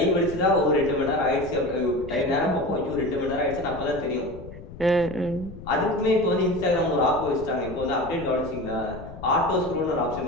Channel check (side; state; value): left; noise; rumble, 14 dB below the sound